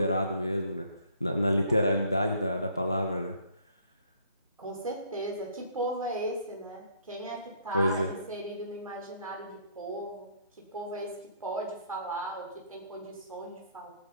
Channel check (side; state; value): both; inverted; correlation -0.63